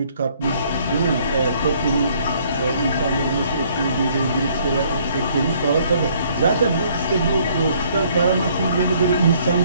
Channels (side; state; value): both; inverted; correlation -0.64